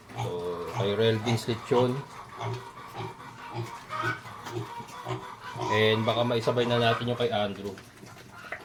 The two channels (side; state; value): both; identical; correlation 1.00